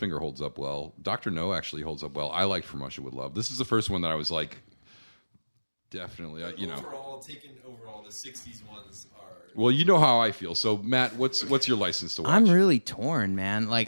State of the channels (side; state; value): both; inverted; correlation -1.00